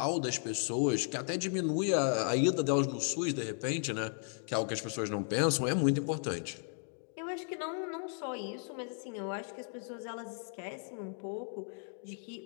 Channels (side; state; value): right; silent; 54 dB below the other